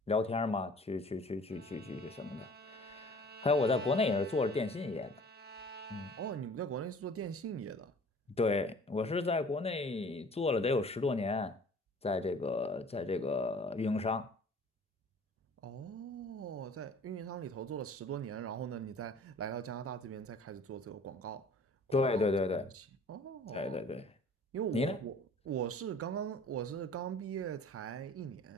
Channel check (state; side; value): normal; both; correlation 0.49